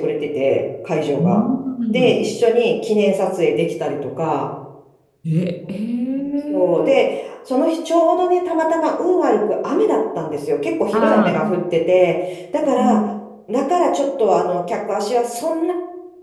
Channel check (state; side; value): identical; both; correlation 1.00